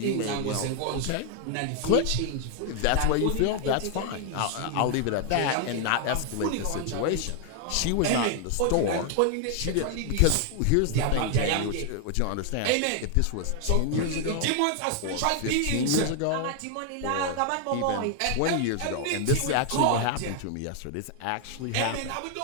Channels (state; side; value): different; both; correlation 0.00